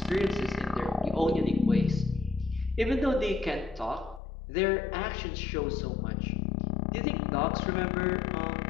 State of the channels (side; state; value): right; drops out; at 4.2 s